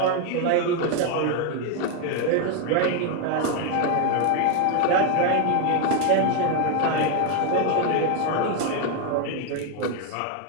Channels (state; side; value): different; both; correlation 0.01